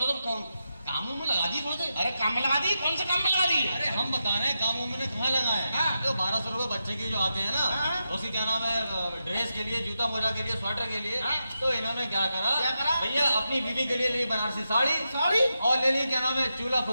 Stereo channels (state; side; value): inverted; both; correlation -0.88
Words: तो कामों में लगा दी थोड़े से। अरे काम में लगा दी? कौन से काम में लगा दी? अरे हम बता रहे हैं कामों में कहाँ लगाए हैं। हाँ। जो 1200 रुपए बच्चे के जो आते हैं ना, हाँ। उसी क्या नाम है, ड्रेस के लिए, जूता मोजा के लिए, स्वेटर के लिए। हाँ। तो इन्होंने क्या करा करा? भैया, अपनी बीवी के लिए ली बनारसी साड़ी साड़ी और ले ली क्या नाम है, चूल्हा